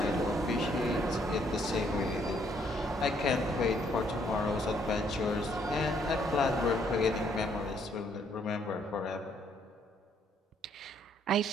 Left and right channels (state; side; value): normal; both; correlation 0.68